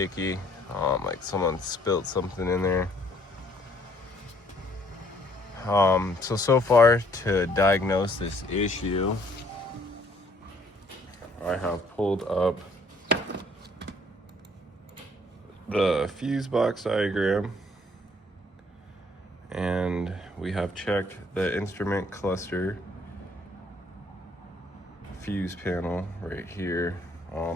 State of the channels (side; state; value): both; normal; correlation 0.63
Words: like someone spilled something in there. So far to diagnose this issue, I have pulled up the fuse box diagram, and we have checked the instrument cluster fuse panel right here.